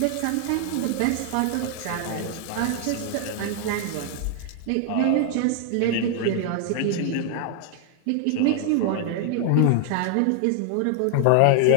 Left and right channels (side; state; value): both; different; correlation 0.00